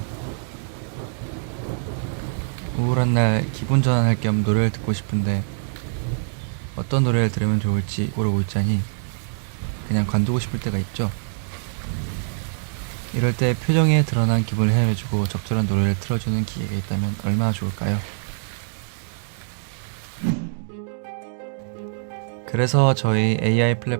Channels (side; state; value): left; silent; digital silence